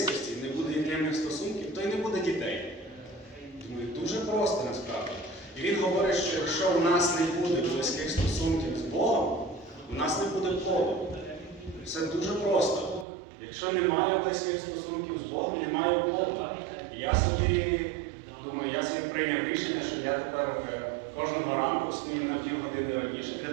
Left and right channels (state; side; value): drops out; left; at 13.1 s